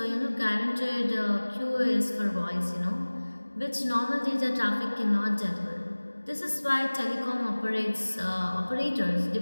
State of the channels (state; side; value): inverted; both; correlation -1.00